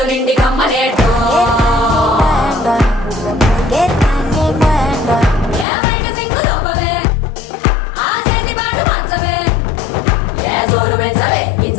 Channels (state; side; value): drops out; right; at 5.7 s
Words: నిండి కమ్మనేట్టు. ఏ బయట సింగు లోపవే ఆ చేతి పాటు మార్చవే. ఏ జోరు పెంచవే